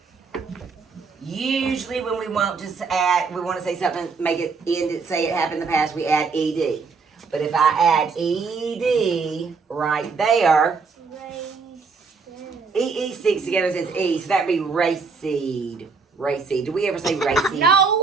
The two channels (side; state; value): left; quieter; 4.9 dB